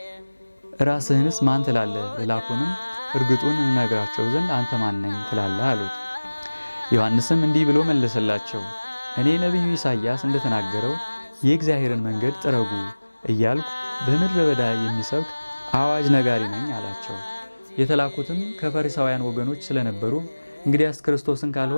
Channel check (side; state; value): both; inverted; correlation -1.00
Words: ራስህንስ ማን ትላለህ? ልላኩንም እርግጡን እንነግራቸው ዘንድ አንተ ማን ነኝ ትላለህ አሉት። ዮሐንስም እንዲህ ብሎ መለሰላቸው፣ እኔ ነቢዩ ኢሳይያስ እንደተናገረው የእግዚአብሔርን መንገድ ጥረጉ እያልኩ በምድረ በዳ የሚሰብክ አዋጅ ነጋሪ ነኝ አላቸው። የተላኩትም ከፈሪሳውያን ወገኖች ስለነበሩ እንግዲያስ ክርስቶስን